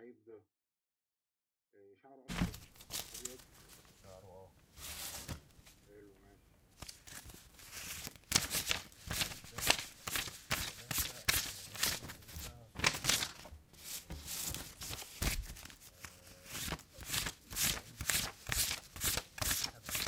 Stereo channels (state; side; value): identical; both; correlation 1.00